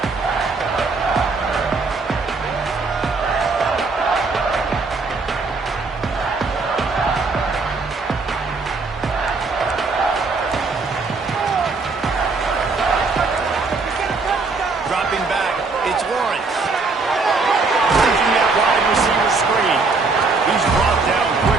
Dropping back, it's Lawrence. Taking that wide receiver screen. He's brought down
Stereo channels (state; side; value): quieter; left; 4.0 dB